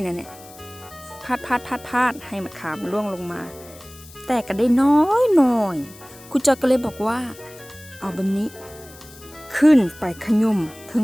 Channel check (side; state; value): left; noise; hiss, 20 dB below the sound